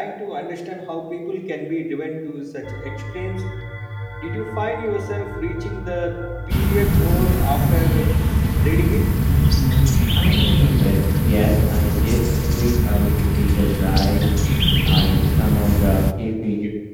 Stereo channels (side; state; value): both; identical; correlation 1.00